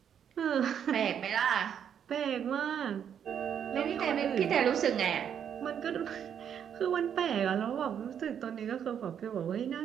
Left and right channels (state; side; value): quieter; left; 8.5 dB